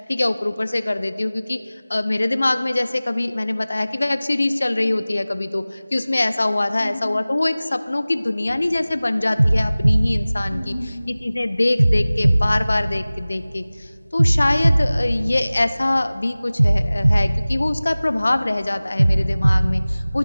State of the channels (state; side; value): inverted; both; correlation -0.98